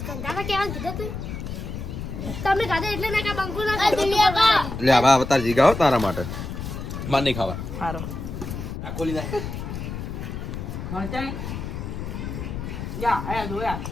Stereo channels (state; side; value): noise; left; rumble, 6 dB below the sound